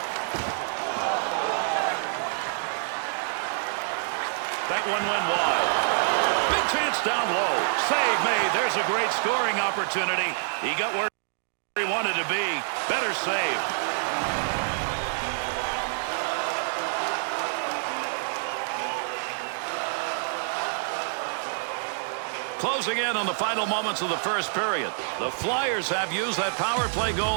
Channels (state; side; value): silent; left; digital silence